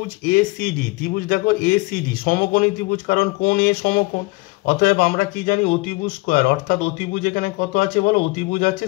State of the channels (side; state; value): right; quieter; 24.6 dB